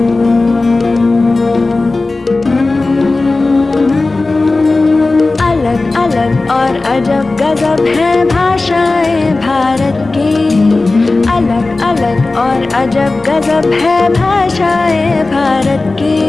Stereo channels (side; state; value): right; quieter; 3.3 dB